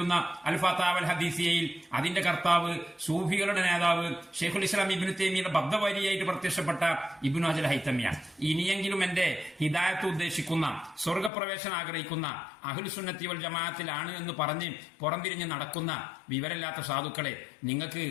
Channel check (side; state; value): right; drops out; at 11.3 s